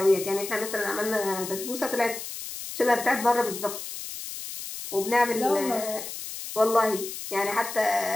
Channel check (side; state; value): left; noise; hiss, 9 dB below the sound